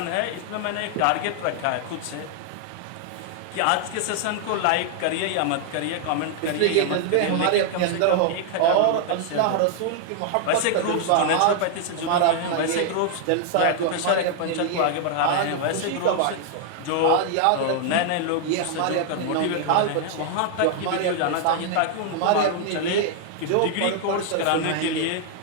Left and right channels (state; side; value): different; both; correlation 0.00